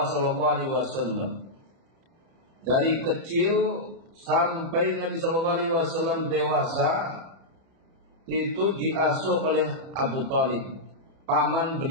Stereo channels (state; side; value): late; left; 30 ms